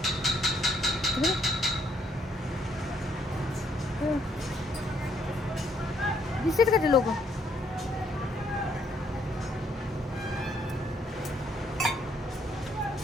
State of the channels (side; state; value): both; normal; correlation 0.69